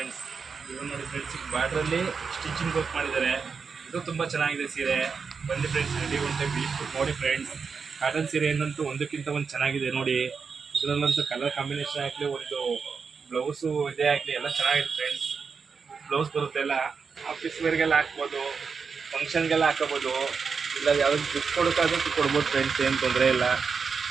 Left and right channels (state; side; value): quieter; left; 5.5 dB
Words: ಇವಾಗ ನೋಡಿ ಫ್ರೆಂಡ್ಸ್, ಬಾರ್ಡ್ರಲ್ಲಿ ಸ್ಟಿಚಿಂಗ್ ವರ್ಕ್ ಮಾಡಿದ್ದಾರೆ, ಇದು ತುಂಬ ಚೆನ್ನಾಗಿದೆ ಸೀರೆ. ಬನ್ನಿ ಫ್ರೆಂಡ್ಸ್, ಅಂಗಡಿ ಒಂದು ಟೈಮ್ ವಿಸಿಟ್ ಕೊಟ್ಟು ನೋಡಿ ಫ್ರೆಂಡ್ಸ್. ಕಾಟನ್ ಸೀರೆ ಏನಂತೂ ಒಂದಕ್ಕಿಂತ ಒಂದು ಚೆನ್ನಾಗಿದೆ. ನೋಡಿ, ಇದರಲ್ಲಂತೂ ಕಲರ್ ಕಾಂಬಿನೇಷನ್ ಆಗಲಿ, ಒಂದು ಬ್ಲೌಸು ಇದೇ ಆಗಲಿ ಎಲ್ಲ ಚೆನ್ನಾಗಿದೆ ಫ್ರೆಂಡ್ಸ್. ಬ್ಲೌಸ್ ಬರುತ್ತೆ ಎಲ್ಲ ಆಫೀಸ್ ವೇರ್ಗೆಲ್ಲ ಹಾಕ್ಬೋದು, ಫಂಕ್ಷನ್ಗೆಲ್ಲ ಹಾಕೋಬೋದು, ಇಲ್ಲ ಯಾವುದಕ್ಕೆ ಗಿಫ್ಟ್ ಕೊಡೋಕ್ಕಾದ್ರೂ ಕೊಡ್ಬೋದು ಫ್ರೆಂಡ್ಸ್, ಏನು ತೊಂದರೆ ಇಲ್ಲ.